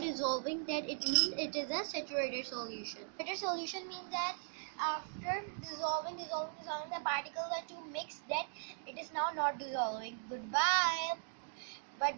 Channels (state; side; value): silent; left; digital silence